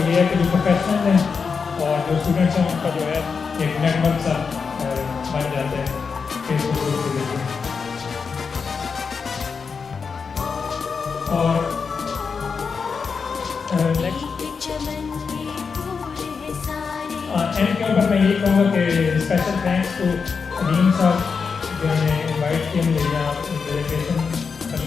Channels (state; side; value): quieter; right; 5.5 dB